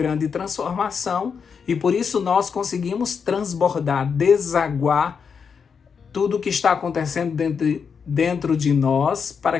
transformação e por isso nós conseguimos transbordar, desaguar tudo o que está acontecendo dentro de nós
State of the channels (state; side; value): quieter; right; 6.2 dB